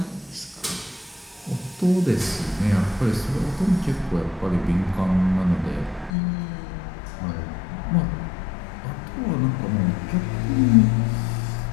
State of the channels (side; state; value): right; drops out; at 6.1 s